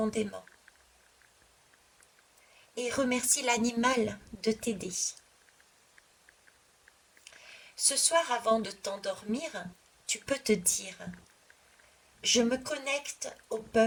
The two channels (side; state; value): both; identical; correlation 1.00